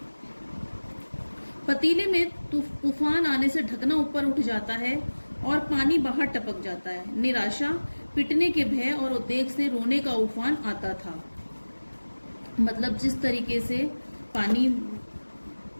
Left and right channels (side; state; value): both; inverted; correlation -1.00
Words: पतीले में तूफान आने से ढकना ऊपर उठ जाता है और पानी बाहर टपक जाता है। निराशा, पिटने के भय और उद्वेग से रोने का उफान आता था। मतलब जिस तरीके से पानी,